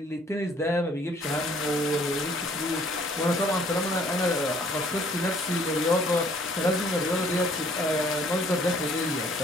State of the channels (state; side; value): normal; both; correlation 0.60